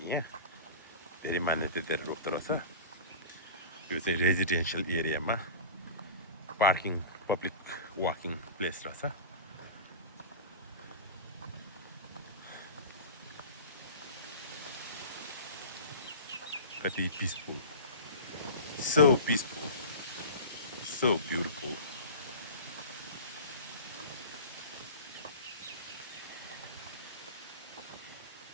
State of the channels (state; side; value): inverted; both; correlation -0.33